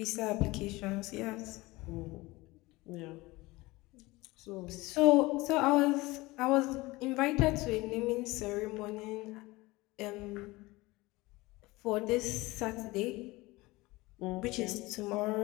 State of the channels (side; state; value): right; quieter; 21.2 dB